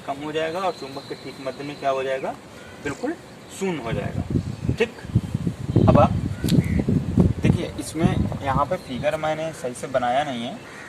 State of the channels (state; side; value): identical; both; correlation 1.00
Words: कम हो जाएगा और चुंबक के ठीक मध्य में क्या हो जाएगा, बिल्कुल शून्य हो जाएगा, ठीक। अब आप देखिए इसमें यहाँ पे फिगर मैंने सही से बनाया नहीं है,